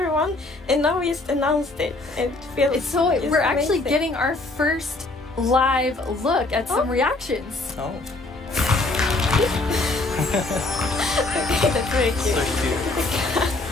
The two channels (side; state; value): right; quieter; 3.0 dB